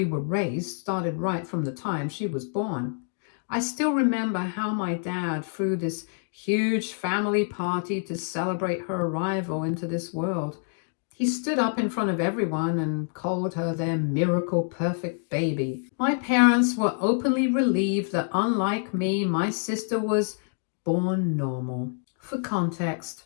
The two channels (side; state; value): right; silent; 60 dB below the other